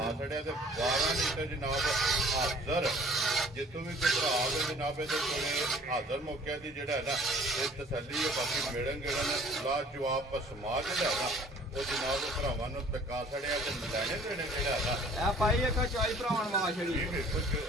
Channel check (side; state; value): both; normal; correlation 0.52